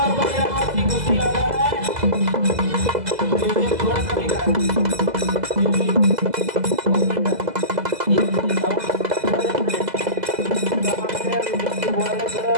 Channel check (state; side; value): late; left; 2.0 ms